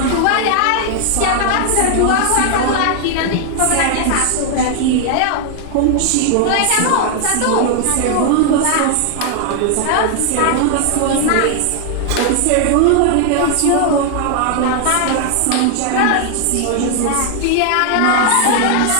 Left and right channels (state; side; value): different; both; correlation 0.00